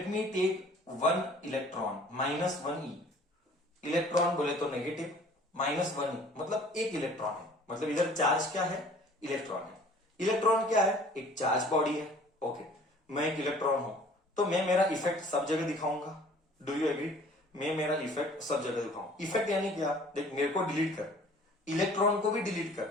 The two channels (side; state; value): both; normal; correlation 0.52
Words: me take one electron, -1e. Electron बोले तो नेगेटिव, -1e मतलब एक इलेक्ट्रॉन है. मतलब इधर चार्ज क्या है? इलेक्ट्रॉन है. इलेक्ट्रॉन क्या है? एक चार्ज बॉडी है. ओके, मैं एक इलेक्ट्रॉन हूं तो मैं मेरा इफेक्ट सब जगह दिखाऊंगा. Do you agree? मैं मेरा इफेक्ट सब जगह दिखाऊं. इफेक्ट यानी क्या? देख, मेरे को डिलीट कर, इलेक्ट्रॉन को भी डिलीट कर,